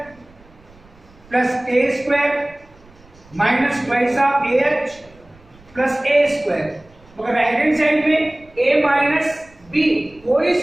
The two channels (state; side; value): noise; right; rumble, 28 dB below the sound